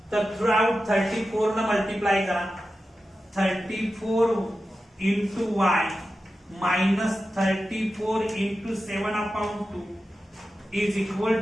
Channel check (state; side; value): normal; both; correlation 0.92